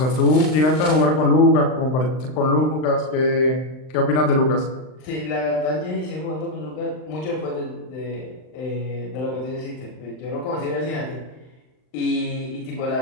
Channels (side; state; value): right; late; 39 ms